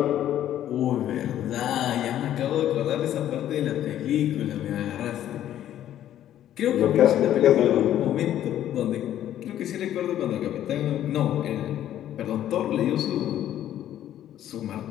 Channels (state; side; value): quieter; right; 11.7 dB